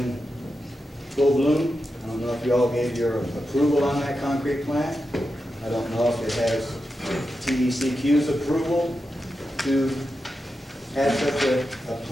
full bloom. I don't know if you all gave your approval on that concrete plant. I don't know if it has TECQ's approval to have such a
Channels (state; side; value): normal; both; correlation 0.89